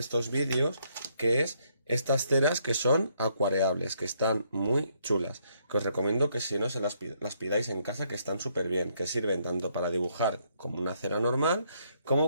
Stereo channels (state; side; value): inverted; both; correlation -0.71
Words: vídeos, que es estas ceras que son acuareables, que están muy chulas, que os recomiendo que si no se las pidáis en casa, que están súper bien, que sirven tanto para dibujar como una cera normal,